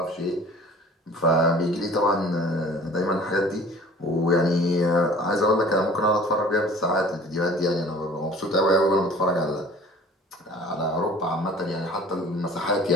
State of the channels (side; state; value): both; normal; correlation 0.48